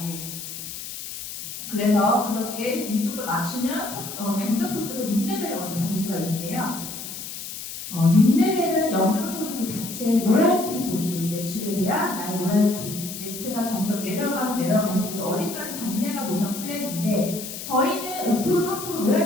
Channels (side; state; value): left; noise; hiss, 9 dB below the sound